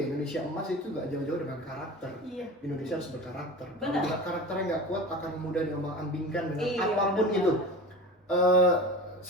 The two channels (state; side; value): normal; both; correlation 0.34